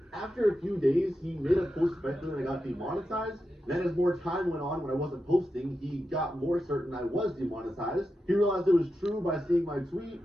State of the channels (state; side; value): normal; both; correlation 0.89